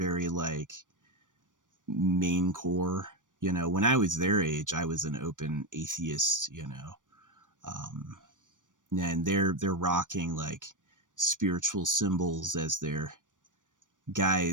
like main core. You know, when I was their age, I was an open atheist, you know. Um, and they're rocking like spiritual symbols as their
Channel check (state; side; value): late; left; 0.88 ms